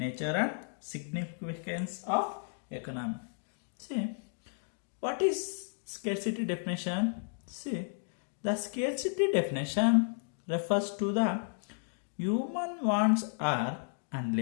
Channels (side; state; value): right; silent; digital silence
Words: and Significance of Economics. See, what is scarcity definition? See, the scarcity definition refers to the human wants are